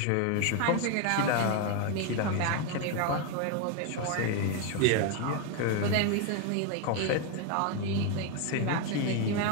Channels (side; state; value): both; different; correlation 0.01